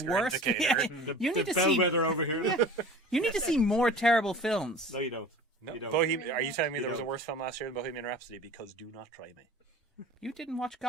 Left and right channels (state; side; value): normal; both; correlation 0.40